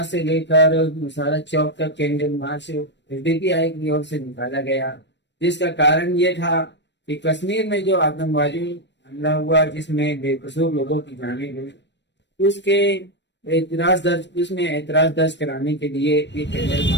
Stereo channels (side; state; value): right; late; 0.52 ms